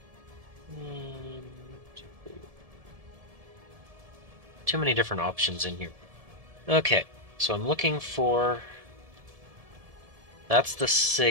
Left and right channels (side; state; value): left; late; 1.7 ms